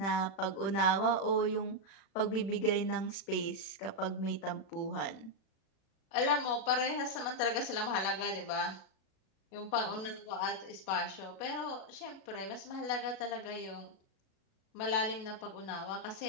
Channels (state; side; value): late; right; 37 ms